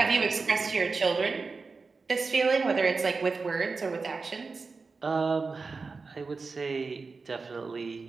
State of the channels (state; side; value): quieter; left; 4.3 dB